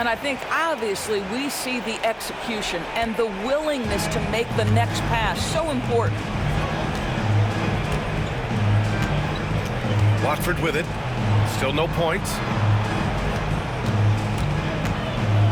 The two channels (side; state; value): both; identical; correlation 1.00